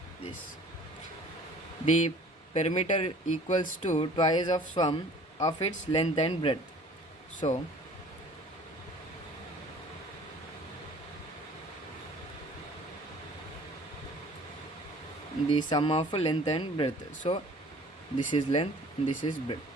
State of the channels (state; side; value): normal; both; correlation 0.50